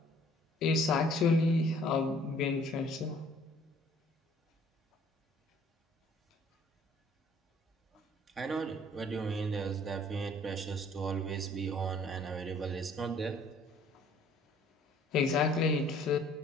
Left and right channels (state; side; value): normal; both; correlation 0.57